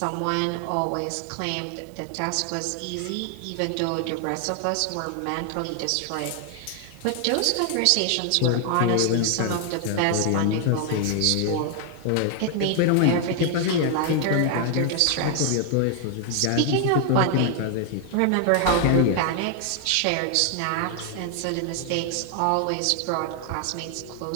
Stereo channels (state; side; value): different; both; correlation 0.00